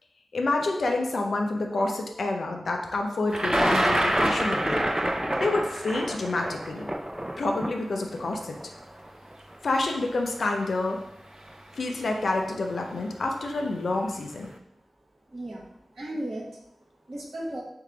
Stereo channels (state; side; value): normal; both; correlation 0.93